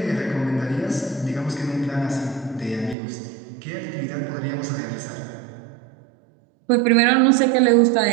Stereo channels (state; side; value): drops out; left; at 3.0 s